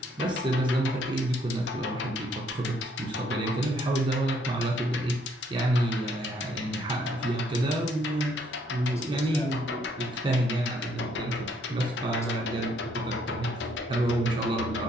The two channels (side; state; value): both; normal; correlation 0.68